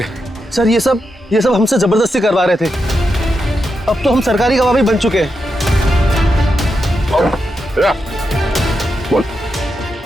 सर ये सब हमसे जबरदस्ती करवा रहे थे। अब तो हम सरकारी गवाह भी बन चुके हैं। बोल।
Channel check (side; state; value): both; normal; correlation 0.86